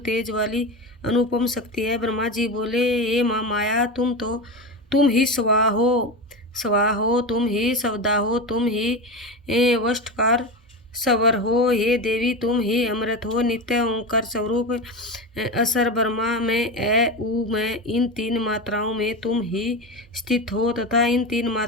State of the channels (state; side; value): normal; both; correlation 0.22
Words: तेज वाली अनुपम शक्ति है। ब्रह्मा जी बोले, हे माँ माया, तुम ही स्वा हो, तुम ही सवदा हो, तुम ही वष्टकार सवर हो। हे देवी, तुम ही अमृत हो, नित्य ओंकार स्वरूप। असर ब्रह्मा में, उ में, इन 3 मात्राओं में तुम ही स्थित हो तथा इन 3